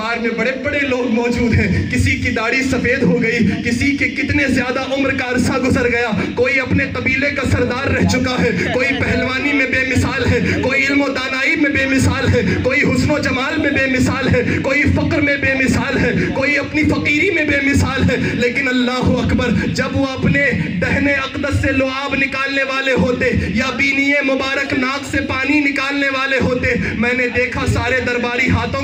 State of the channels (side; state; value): both; identical; correlation 1.00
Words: میں بڑے بڑے لوگ موجود ہیں، کسی کی داڑھی سفید ہو گئی، کسی کے کتنے زیادہ عمر کا عرصہ گزر گیا، کوئی اپنے قبیلے کا سردار رہ چکا ہے، کوئی پہلوانی میں بے مثال ہے، کوئی علم و دانائی میں بے مثال ہے، کوئی حسن و جمال میں بے مثال ہے، کوئی فقر میں بے مثال ہے، کوئی اپنی فقیری میں بے مثال ہے، لیکن اللہ اکبر جب وہ اپنے دہنے اقدس سے لعاب نکالنے والے ہوتے یا بینی مبارک ناک سے پانی نکالنے والے ہوتے، میں نے دیکھا سارے درباری ہاتھوں